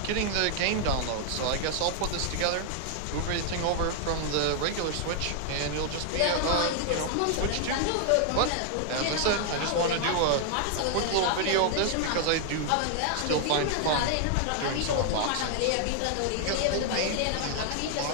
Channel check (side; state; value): both; different; correlation 0.00